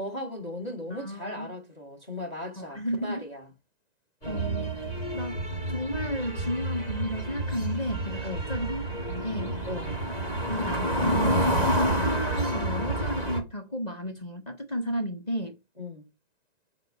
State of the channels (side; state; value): right; late; 1.9 ms